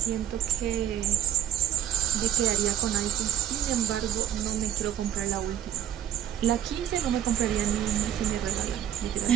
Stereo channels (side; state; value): left; quieter; 10.9 dB